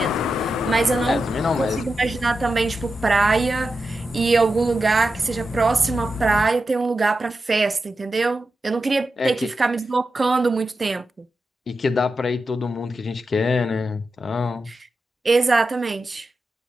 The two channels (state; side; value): normal; both; correlation 0.90